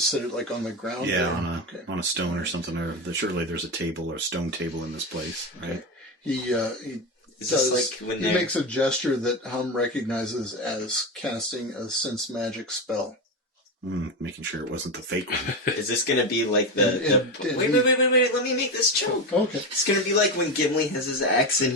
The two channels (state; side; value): normal; both; correlation 0.16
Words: sit it, like on the ground? Yeah, there? on a stone or something. Or surely there's a table or a stone table in this place, right? Okay. He Is this like when he they're... makes a gesture that Hum recognizes as casting a sense magic spell. Making sure it wasn't the fake one. Is this gonna be like the... And Wait, let me make this joke. Okay. It's gonna be like when Gimli has his axe and